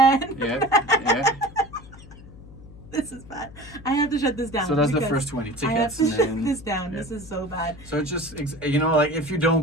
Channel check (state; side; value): noise; left; hum, 19 dB below the sound